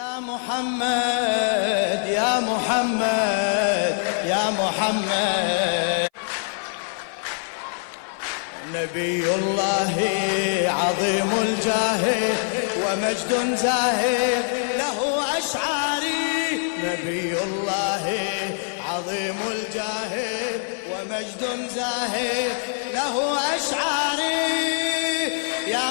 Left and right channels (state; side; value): silent; right; 56 dB below the other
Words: محمد يا محمد يا محمد، نبي الله عظيم الجاه ومجد زاهي له أشعاري. نبي الله عظيم الجاه ومجد زاهي له أشعاري.